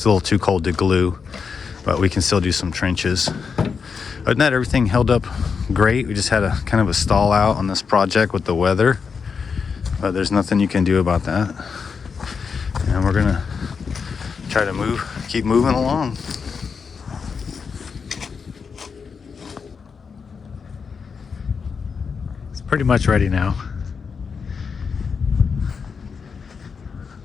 too cold to glue, but we can still do some trenches. Other than that, everything held up great. We just had a kind of a stall out on this project with the weather, but there's nothing you can do about that, and we're gonna try to keep moving along. It's pretty much ready now.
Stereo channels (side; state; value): right; quieter; 5.7 dB